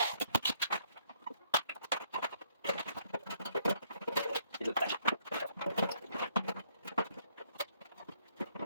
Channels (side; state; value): both; inverted; correlation -0.68